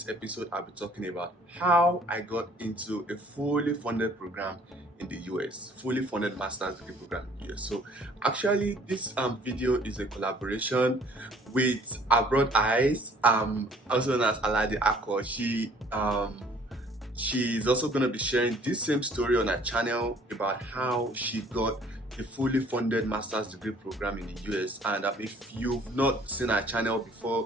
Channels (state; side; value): normal; both; correlation 0.56